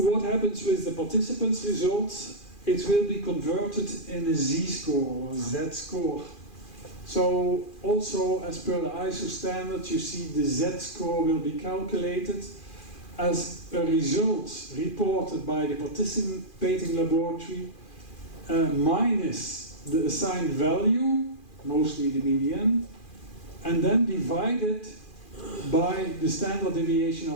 happens with the participants' results? It will be converted in a z-score or z-score. So also, as per the ISO standard, you see the z-score will be calculated as a result reported by the participating laboratory minus the assigned value, mostly the median, and then divided by the standard deviation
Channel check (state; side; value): late; right; 2.4 ms